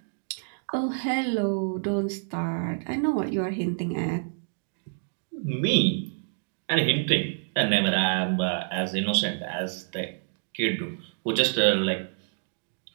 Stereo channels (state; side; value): silent; left; digital silence